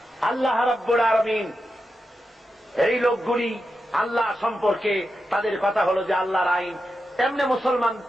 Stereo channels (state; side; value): normal; both; correlation 0.89